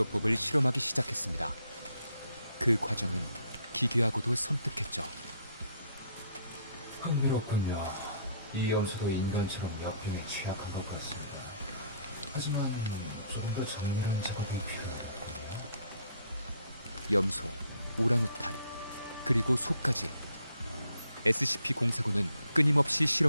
실험하기 시작했습니다. 그 과정은 기괴하고도 섬뜩했죠. 흥미롭군요. 이 염소도 인간처럼 역병에 취약한 것 같습니다. 하지만 좀 더 정밀한 작업이 필요합니다. 염소, 오랑우탄, 그리고 소까지 SCP-049는 끊임없이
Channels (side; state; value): both; inverted; correlation -0.65